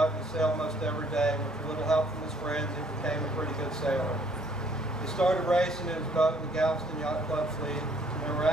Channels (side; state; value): both; normal; correlation 0.63